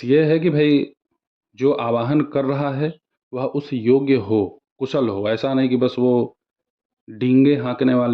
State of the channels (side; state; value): both; identical; correlation 1.00